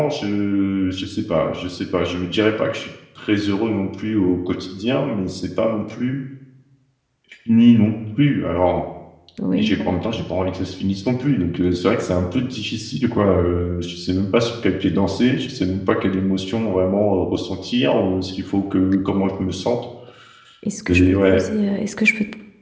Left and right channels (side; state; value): both; identical; correlation 1.00